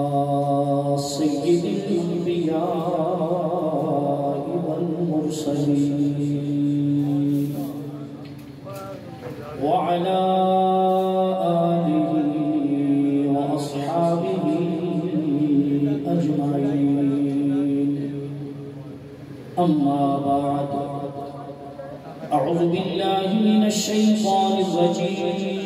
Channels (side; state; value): both; identical; correlation 1.00